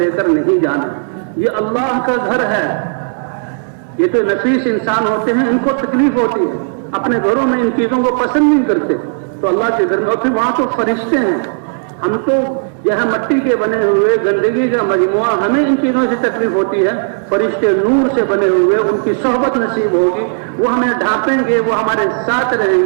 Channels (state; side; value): silent; left; digital silence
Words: کر نہیں جانا. یہ اللہ کا گھر ہے. یہ تو نفیس انسان ہوتے ہیں، ان کو تکلیف ہوتی ہے، اپنے گھروں میں ان چیزوں کو پسند نہیں کرتے. تو اللہ کے گھر میں، اور پھر وہاں تو فرشتے ہیں. ہم تو یہاں مٹی کے بنے ہوئے گندگی کا مجموعہ، ہمیں ان چیزوں سے تکلیف ہوتی ہے. فرشتے نور سے بنے ہوئے، ان کی صحبت نصیب ہوگی، وہ ہمیں ڈھانپیں گے، وہ ہمارے ساتھ